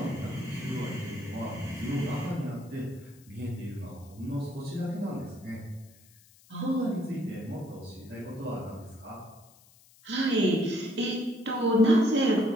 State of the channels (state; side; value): noise; left; hiss, 26 dB below the sound